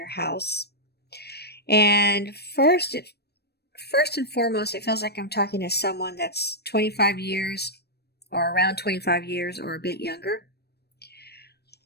house. And first and foremost, it feels like I'm talking to someone that's 25 years or around 25 years or a bit younger,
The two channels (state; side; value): late; right; 0.47 ms